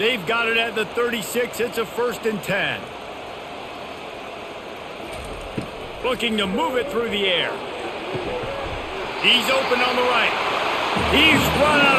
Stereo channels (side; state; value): both; identical; correlation 1.00